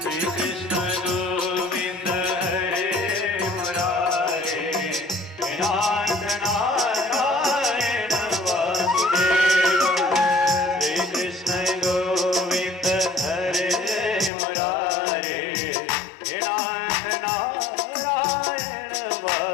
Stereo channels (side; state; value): right; drops out; at 14.3 s